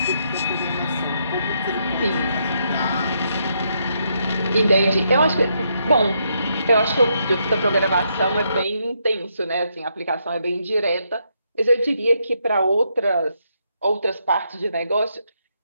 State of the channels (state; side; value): inverted; both; correlation -0.77